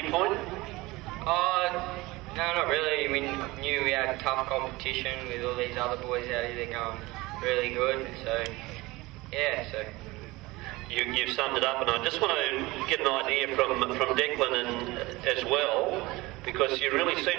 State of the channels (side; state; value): left; quieter; 21.1 dB